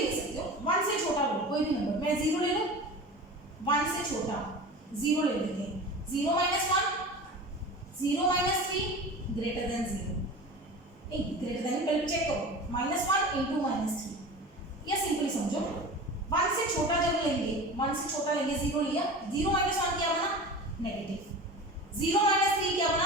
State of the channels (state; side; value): normal; both; correlation 0.34